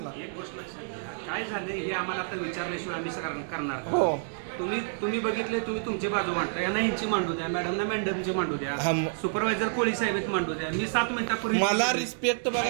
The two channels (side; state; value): left; silent; digital silence